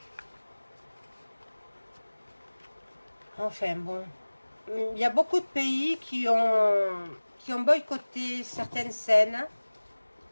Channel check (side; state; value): both; inverted; correlation -1.00